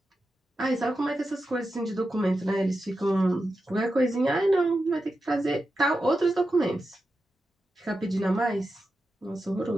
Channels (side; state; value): both; normal; correlation 0.90